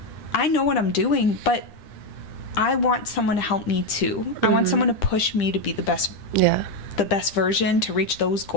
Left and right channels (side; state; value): right; late; 9.9 ms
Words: know what I'm doing, but I want someone to help me too. I want someone to push me to be the best version, to reach those